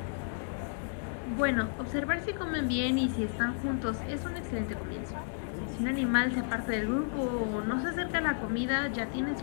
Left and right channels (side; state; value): right; silent; digital silence